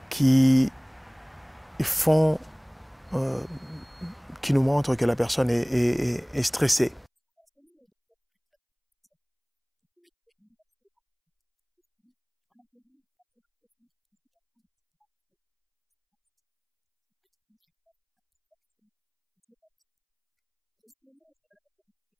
qui nous montrent que la personne est stressée. Alors, selon le docteur Herbert Benson de l'université Harvard, il dit ceci, environ 80% des consultations médicales seraient liées au stress d'une manière indirecte ou directe. Et selon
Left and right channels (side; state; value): both; identical; correlation 1.00